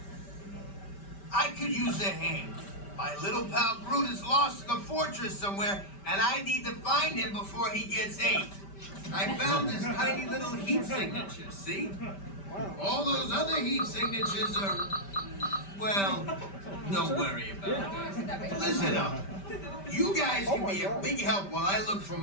I could use a hand. My little pal Groot is lost in the fortress somewhere, and I need to find him before he gets ate. I found this tiny little heat signature, see? All those other heat signatures are, well, don't worry about it. Listen up. You guys can be a big help while I look for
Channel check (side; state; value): right; late; 5.1 ms